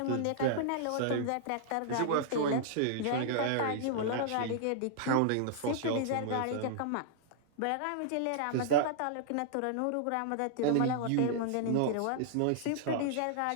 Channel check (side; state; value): both; different; correlation -0.01